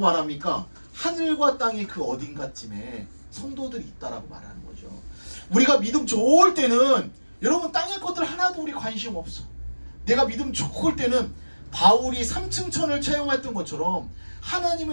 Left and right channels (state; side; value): inverted; both; correlation -1.00